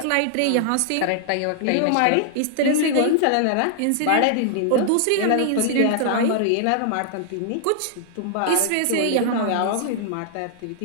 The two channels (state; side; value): different; both; correlation -0.01